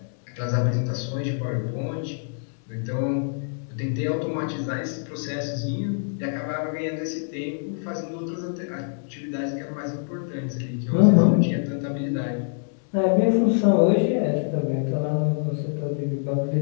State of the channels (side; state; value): right; silent; digital silence